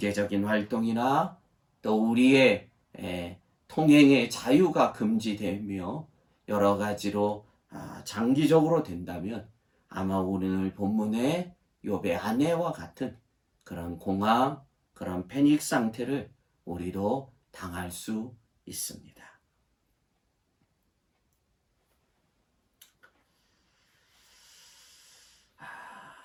활동이나 또 우리의 통행의 자유가 금지되며 여러 가지로 장기적으로 된다면 아마 오늘 본문의 욥의 아내와 같은 그런 공황, 그런 패닉 상태를 우리도 당할 수 있습니다.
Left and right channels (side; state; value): both; identical; correlation 1.00